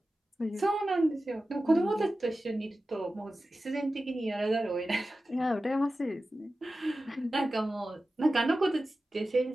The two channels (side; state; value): both; normal; correlation 0.94